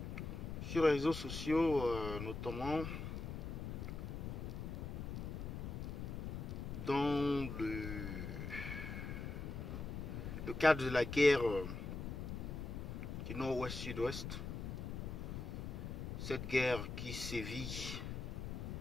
sur les réseaux sociaux, notamment dans le cadre de la guerre du nord-ouest-sud-ouest. Cette guerre qui sévit,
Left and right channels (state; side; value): noise; left; rumble, 5 dB below the sound